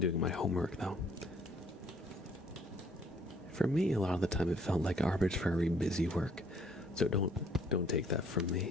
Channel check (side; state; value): both; normal; correlation 0.62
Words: my homework, though. For me, a lot of the time it felt like arbitrary busy work. So don't take that from